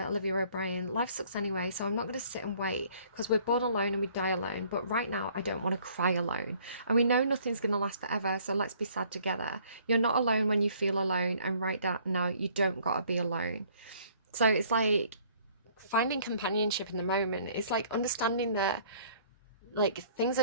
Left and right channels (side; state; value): both; inverted; correlation -0.59